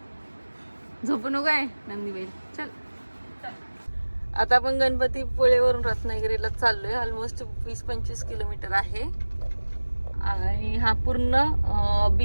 झोपू नको आहे नंदीबाई. चल आता आपण गणपतीपुळेवरून रत्नागिरीला चाललोय. ऑलमोस्ट 20-25 किलोमीटर आहे आणि हा पूर्ण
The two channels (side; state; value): both; inverted; correlation -1.00